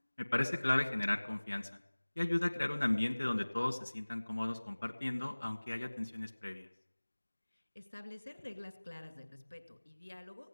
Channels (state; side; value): inverted; both; correlation -1.00